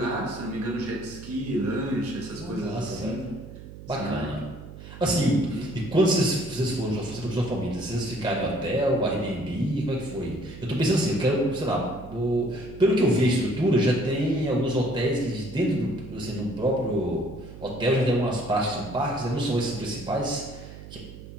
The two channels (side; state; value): right; noise; hum, 14 dB below the sound